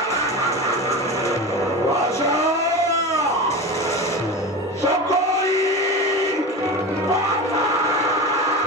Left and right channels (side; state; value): both; normal; correlation 0.27